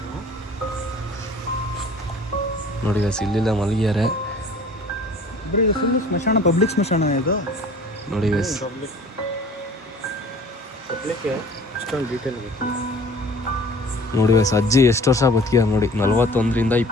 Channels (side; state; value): both; normal; correlation 0.48